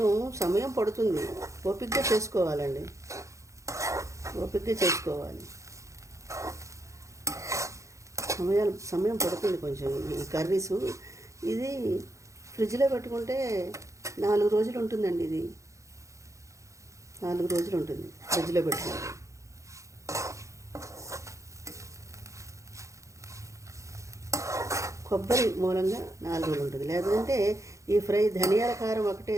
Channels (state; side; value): late; left; 0.15 ms